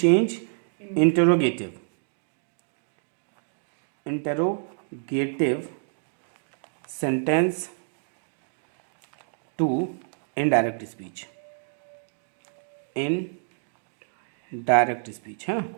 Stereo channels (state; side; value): silent; left; digital silence